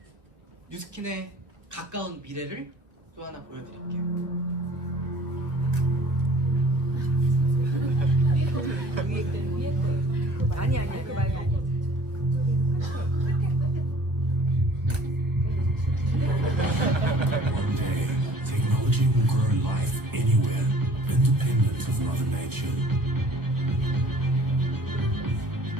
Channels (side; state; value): left; late; 1.5 ms